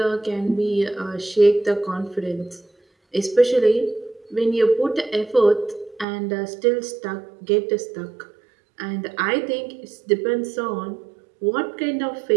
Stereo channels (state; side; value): drops out; left; at 6.1 s